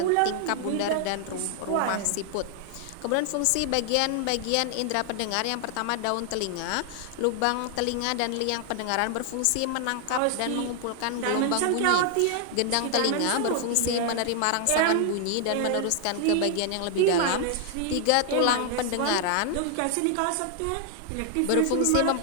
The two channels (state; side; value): different; both; correlation 0.00